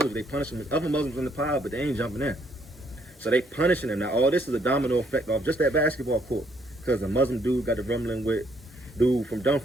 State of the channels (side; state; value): both; normal; correlation 0.69